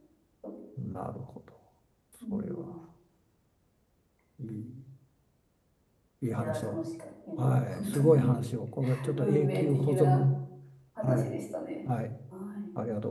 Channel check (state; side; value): identical; both; correlation 1.00